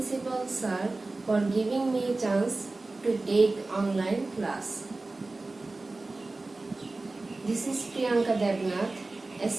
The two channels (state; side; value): quieter; left; 3.2 dB